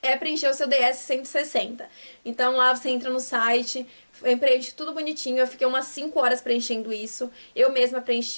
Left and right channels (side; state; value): both; inverted; correlation -1.00